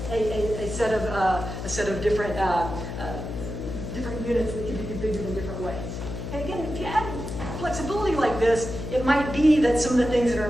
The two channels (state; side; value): noise; left; hum, 7 dB below the sound